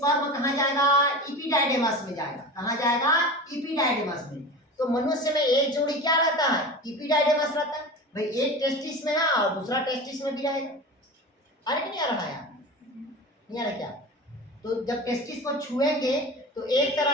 कहाँ जाएगा, इपिडाइडेमस में जाएगा। कहाँ जाएगा, इपिडाइडेमस में। तो मनुष्य में एक जोड़ी क्या रहता है, इपिडाइडेमस रहता है। भाई एक टेस्टिस में है और दूसरा टेस्टिस में भी रहेगा। अरे नहीं आ रहा है, नहीं आ रहा क्या? तो जब टेस्टिस को छुएंगे तो एक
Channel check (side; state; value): both; normal; correlation 0.31